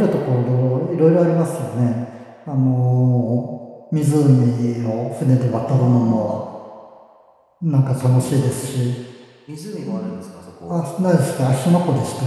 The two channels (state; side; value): identical; both; correlation 1.00